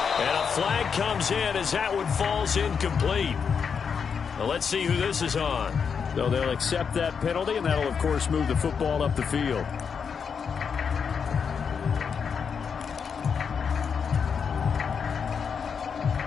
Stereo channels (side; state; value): right; quieter; 6.4 dB